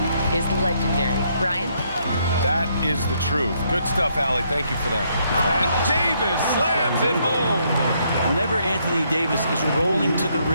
is legendary. Brian? That is the truth. Good stuff, Allie. Thank you for that. And Davis slams it home. Whenever Anthony Davis is rolling to the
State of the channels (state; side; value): inverted; both; correlation -0.72